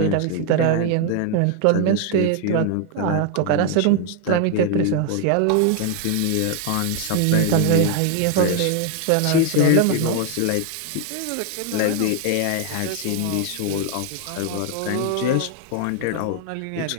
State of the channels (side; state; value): both; different; correlation 0.01